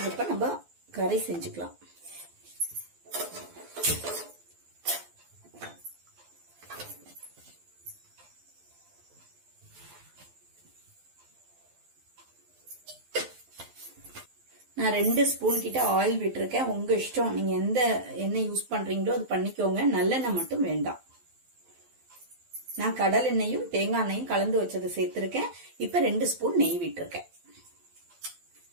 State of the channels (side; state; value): left; late; 12 ms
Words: இப்ப நம்ம கறி செஞ்சுக்கலாம். நான் 2 ஸ்பூன் கிட்ட ஆயில் விட்டுருக்கேன். உங்க இஷ்டம், நீங்க எந்த எண்ணெய் யூஸ் பண்றீங்களோ அது பண்ணிக்கோங்க. நல்லெண்ணெய் மட்டும் வேண்டாம். நான் கடல் எண்ணெயும் தேங்காய் எண்ணெயும் கலந்து வச்சது சேர்த்திருக்கேன். இப்ப 2 ஸ்பூன் நெய் விட்டுருக்கேன்.